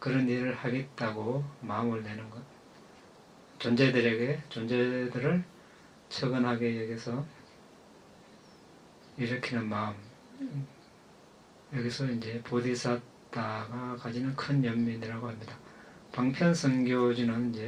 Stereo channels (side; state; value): both; identical; correlation 1.00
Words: 일을 하겠다고 마음을 내는 것, 존재들을 처근하게 여기서 일으키는 마음, 여기서 이제 보디사타가 가지는 큰 연민이라고 합니다. 방편성교지는